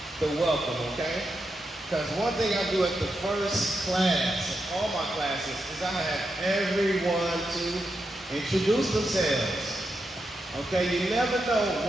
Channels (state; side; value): normal; both; correlation 0.86